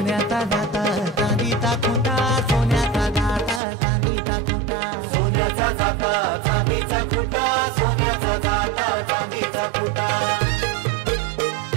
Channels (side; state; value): left; drops out; at 3.6 s